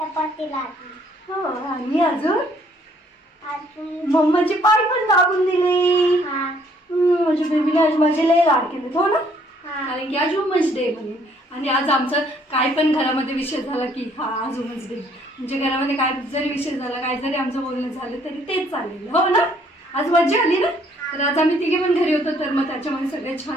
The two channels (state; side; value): normal; both; correlation 0.64